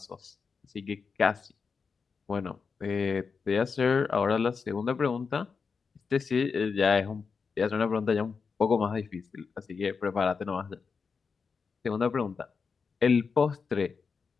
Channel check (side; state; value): right; quieter; 5.3 dB